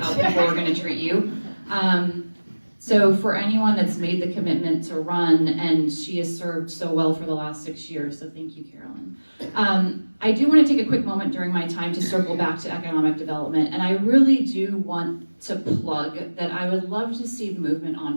people are going to treat you. So for anyone that's made the commitment to run, and she has served so well for the last 6 years, so thank you, Carolyn. I do want to take a quick moment during my time to circle back to economic development, and I really do want to plug that I would love to see movement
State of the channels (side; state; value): both; inverted; correlation -1.00